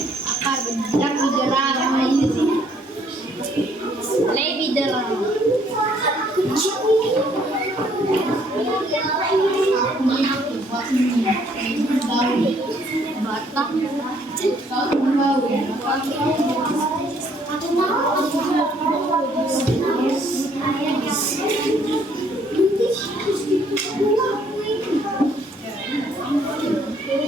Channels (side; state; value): both; normal; correlation 0.65